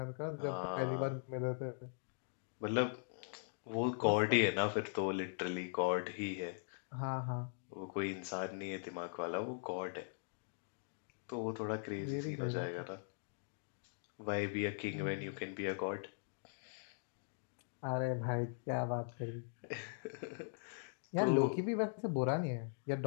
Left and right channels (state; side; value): silent; right; digital silence